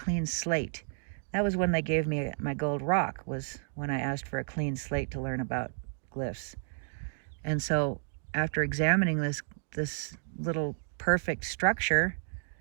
slate. That was when they gave me my gold rock, was when I asked for a clean slate to learn about glyphs. And so after examining this little perfect structure,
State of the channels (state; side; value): silent; left; digital silence